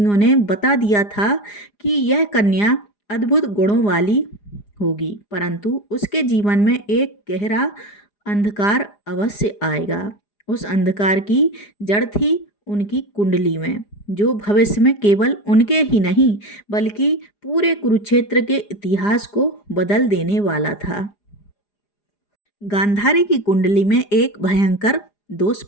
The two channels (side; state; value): right; late; 4.9 ms